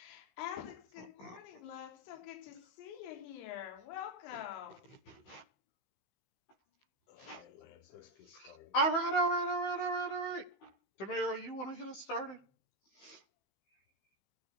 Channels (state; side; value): late; right; 15 ms